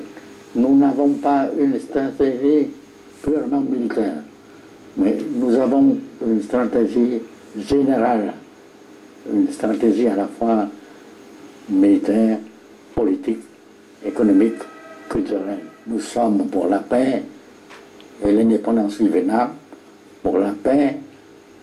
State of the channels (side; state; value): both; identical; correlation 1.00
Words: nous n'avons pas une stratégie purement militaire, mais nous avons une stratégie générale, une stratégie à la fois militaire, politique, économique, culturelle. Nous sommes pour la paix et l'indépendance du Vietnam, pour la paix,